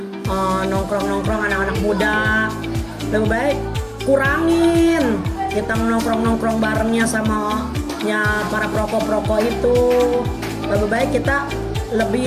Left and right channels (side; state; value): both; identical; correlation 1.00